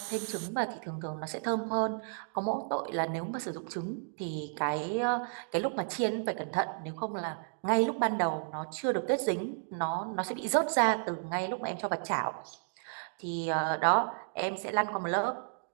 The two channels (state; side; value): silent; left; digital silence